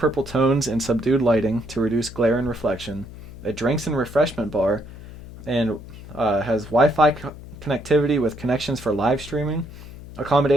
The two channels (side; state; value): left; noise; hum, 15 dB below the sound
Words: tones and subdued lighting to reduce glare and reflection. A drinks and refreshment bar, and has Wi-Fi connectivity with connections for live streaming,